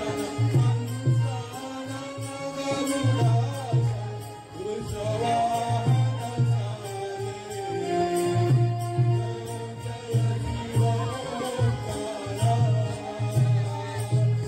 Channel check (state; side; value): identical; both; correlation 1.00